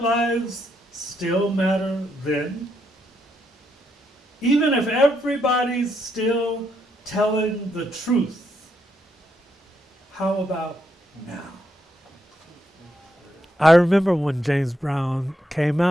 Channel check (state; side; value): normal; both; correlation 0.78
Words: still matter then? Even if everybody's still telling the truth, how about now? I remember when James Brown came